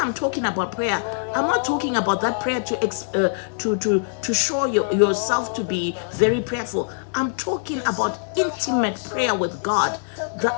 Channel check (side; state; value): right; silent; digital silence